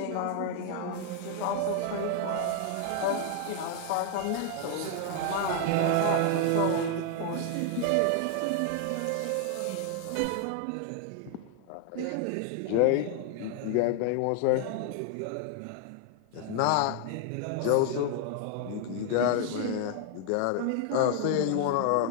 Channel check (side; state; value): both; different; correlation 0.00